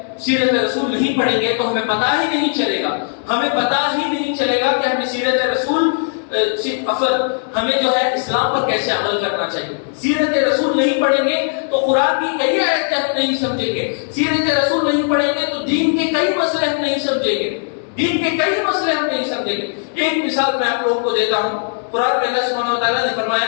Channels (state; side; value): silent; right; 60 dB below the other